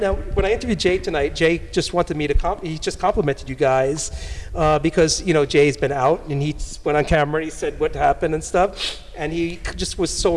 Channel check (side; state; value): both; identical; correlation 1.00